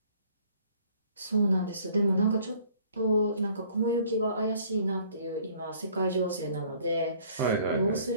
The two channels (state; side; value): inverted; both; correlation -0.57